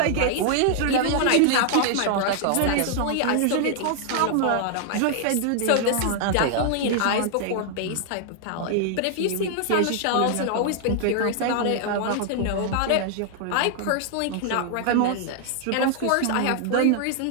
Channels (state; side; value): different; both; correlation 0.00